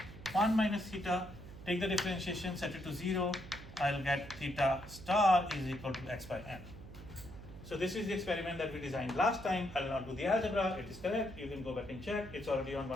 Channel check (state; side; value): noise; right; hum, 15 dB below the sound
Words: 1 minus theta. Take the differentiation, set it to 0, I'll get theta star is equal to x by n. So this is the experiment that we designed last time. I'll not do the algebra, it is correct, you can go back and check, it's already on